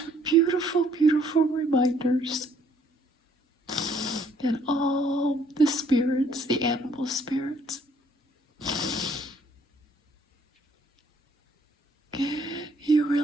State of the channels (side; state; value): both; normal; correlation 0.64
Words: beautiful, beautiful reminders. And all the spirits, the animal spirits. You